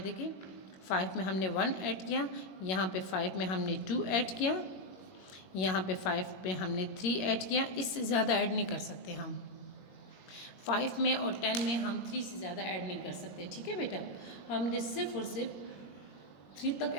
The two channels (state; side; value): late; right; 21 ms